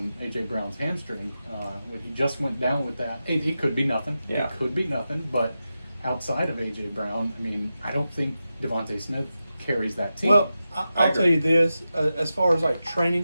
A.J. Brown's hamstring. When he just went down with that, it could be nothing. Yeah. It could be nothing, but outside of A.J. Brown, I mean, I don't think Devontae Smith carries that team. Well, I I'll agree. tell you this: as far as like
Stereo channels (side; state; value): both; inverted; correlation -0.91